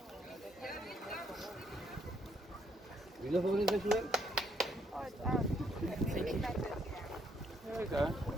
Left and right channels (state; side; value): normal; both; correlation 0.71